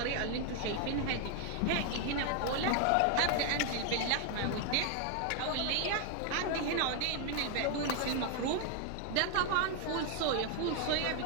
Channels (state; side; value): different; both; correlation 0.01